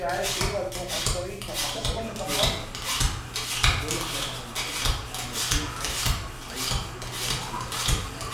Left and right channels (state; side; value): identical; both; correlation 1.00